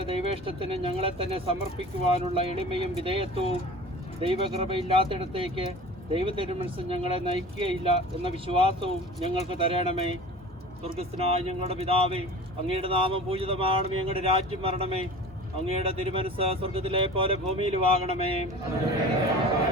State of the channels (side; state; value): both; normal; correlation 0.39